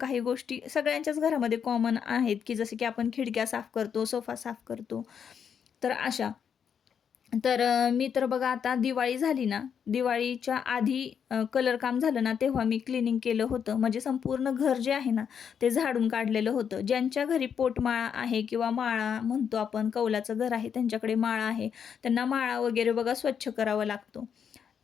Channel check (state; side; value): quieter; right; 7.5 dB